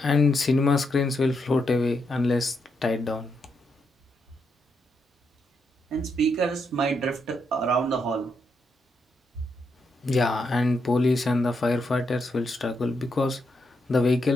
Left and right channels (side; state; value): both; normal; correlation 0.80